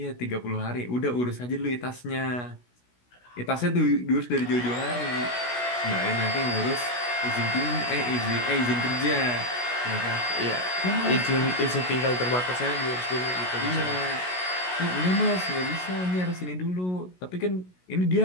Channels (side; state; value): right; late; 16 ms